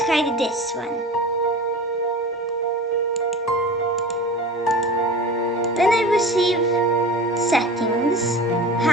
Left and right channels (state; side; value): normal; both; correlation 0.35